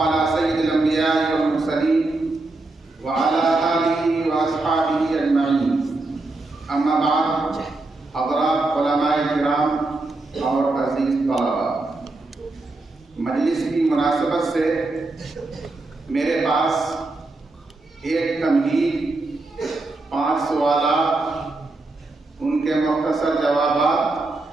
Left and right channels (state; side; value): quieter; left; 3.1 dB